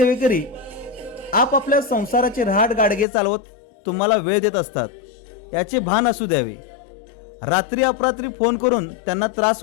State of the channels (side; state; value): right; drops out; at 3.1 s